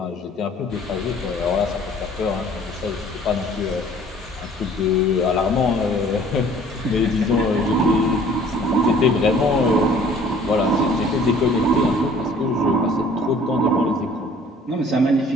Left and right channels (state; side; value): normal; both; correlation 0.53